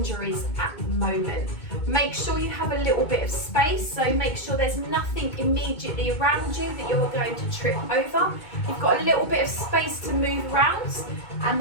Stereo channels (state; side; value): late; right; 2.2 ms